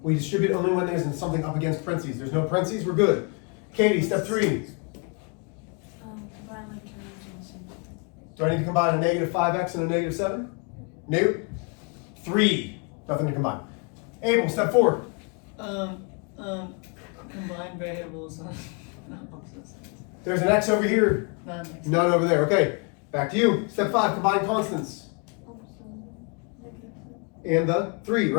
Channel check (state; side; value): quieter; right; 33.8 dB